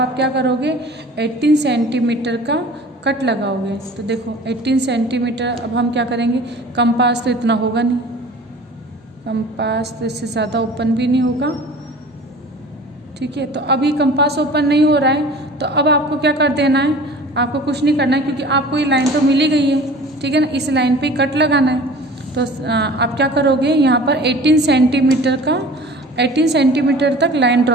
क्या करोगे, 18 सेंटीमीटर का कट लगाओगे। तो देखो 18 सेंटीमीटर, अब हम क्या करेंगे, कंपास तो इतना होगा नहीं, कंपास तो इससे ज़्यादा ओपन भी नहीं होगा, ठीक है। तो अभी कंपास ओपन नहीं हो रहा है, तो अब आपको क्या कर देना है, आपको कुछ नहीं करना है, क्योंकि आपको ये लाइन तो मिल ही गई है, ठीक है ना। इस लाइन पे कट लगाना है। तो आप क्या करोगे, यहाँ पर 18 सेंटीमीटर तक लाइन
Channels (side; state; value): both; normal; correlation 0.43